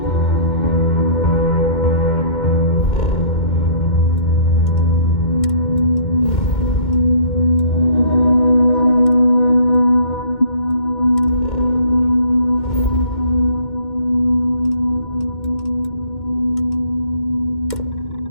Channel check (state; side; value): late; right; 2.1 ms